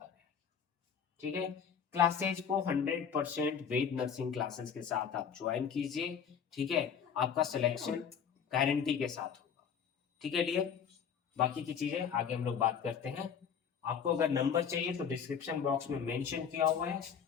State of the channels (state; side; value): quieter; right; 7.4 dB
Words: है। ठीक है, क्लासेज को 100% वेद नर्सिंग क्लासेस के साथ आप ज्वाइन कीजिए। ठीक है, आपका सिलेक्शन गारंटी के साथ होगा। ठीक है डियर, बाकी की चीजें आगे हम लोग बात करते हैं। आपको अगर नंबर चाहिए तो डिस्क्रिप्शन बॉक्स में मेंशन किया हुआ है,